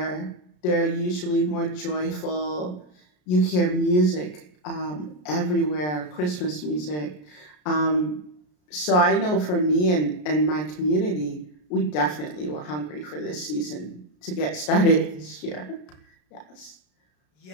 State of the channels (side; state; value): right; late; 33 ms